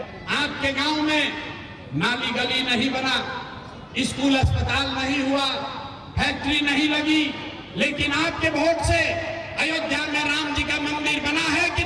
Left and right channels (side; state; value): both; identical; correlation 1.00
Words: आपके गांव में नाली गली नहीं बना, स्कूल अस्पताल नहीं हुआ, फैक्ट्री नहीं लगी, लेकिन आपके वोट से अयोध्या में राम जी का मंदिर बना है कि